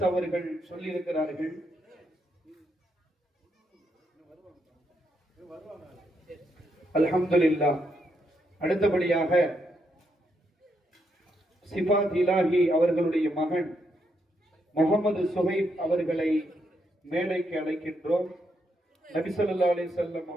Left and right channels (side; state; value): both; normal; correlation 0.79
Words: அவர்கள் சொல்லி இருக்கிறார்கள். அல்ஹம்துலில்லாஹ். அடுத்தபடியாக சிஃபாத் இலாஹி அவர்களுடைய மகன் முகமது சுஹைப் அவர்களை மேடைக்கு அழைக்கின்றோம். நபி ஸல்லல்லாஹு அலைஹி வஸல்லம்